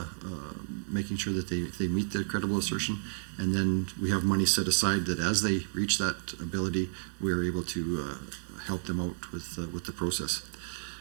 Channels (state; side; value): silent; left; digital silence